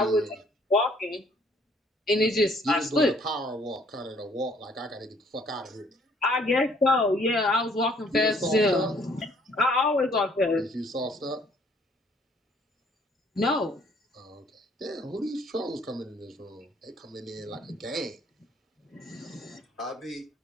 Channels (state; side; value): normal; both; correlation 0.62